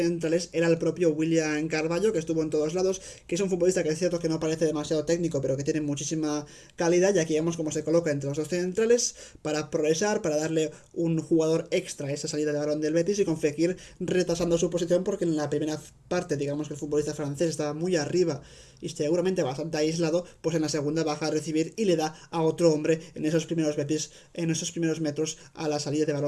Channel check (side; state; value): both; identical; correlation 1.00